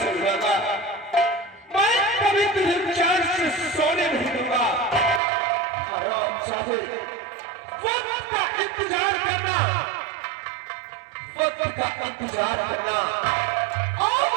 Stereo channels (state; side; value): drops out; left; at 5.2 s